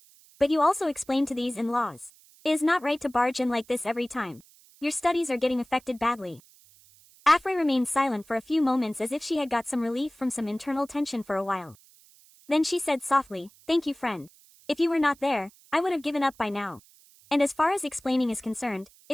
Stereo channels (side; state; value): right; noise; hiss, 27 dB below the sound